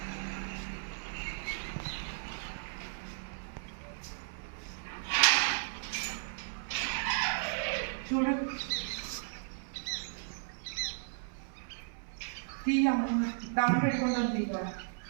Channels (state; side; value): silent; left; 54 dB below the other